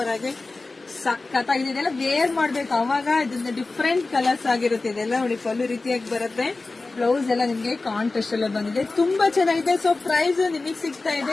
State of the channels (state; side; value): quieter; right; 3.5 dB